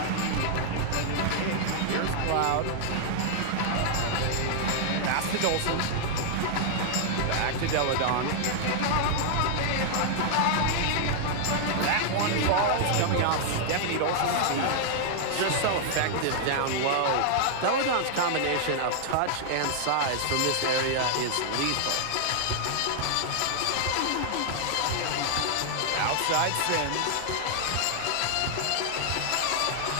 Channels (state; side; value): different; both; correlation 0.00